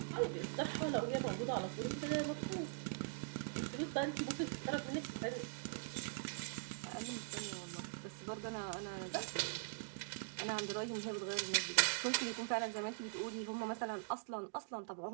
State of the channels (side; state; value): left; silent; digital silence